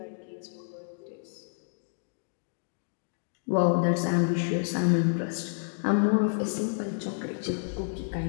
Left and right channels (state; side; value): silent; right; digital silence